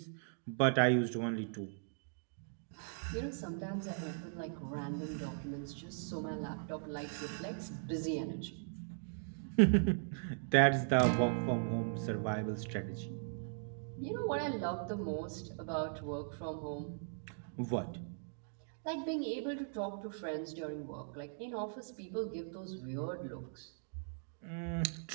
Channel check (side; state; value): left; silent; digital silence